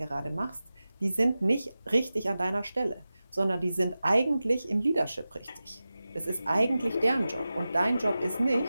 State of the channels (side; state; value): both; inverted; correlation -0.95